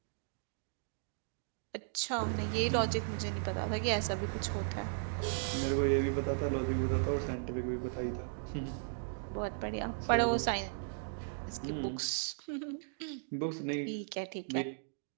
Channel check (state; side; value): silent; left; digital silence